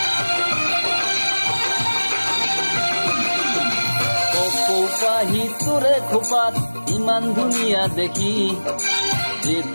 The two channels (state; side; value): inverted; both; correlation -1.00